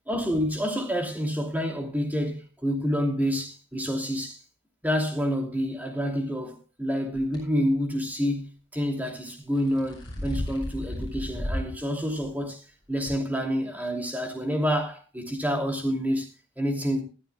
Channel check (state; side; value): normal; both; correlation 0.80